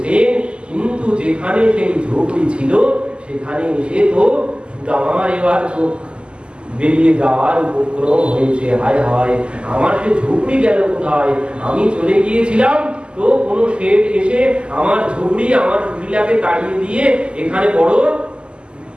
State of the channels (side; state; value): left; late; 0.051 ms